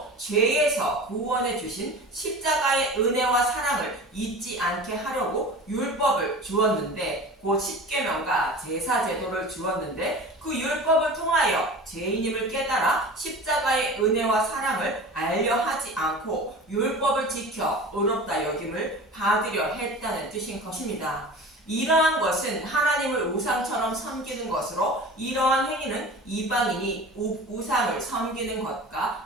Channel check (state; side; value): normal; both; correlation 0.36